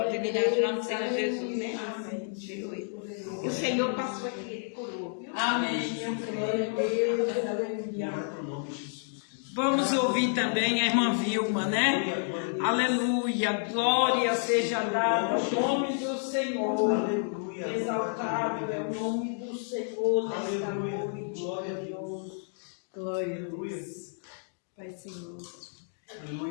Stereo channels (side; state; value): right; silent; digital silence